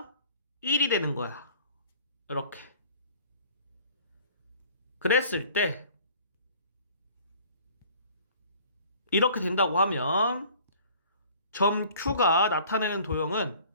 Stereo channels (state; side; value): inverted; both; correlation -0.51